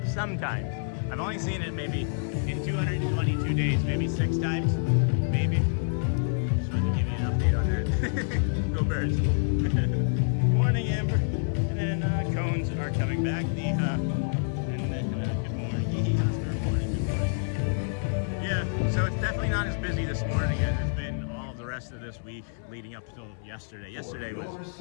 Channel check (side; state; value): right; silent; 60 dB below the other